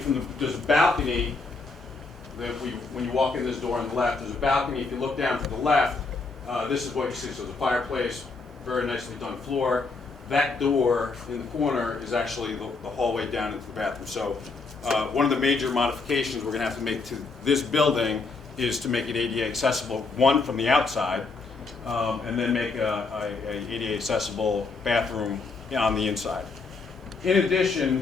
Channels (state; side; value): quieter; right; 4.1 dB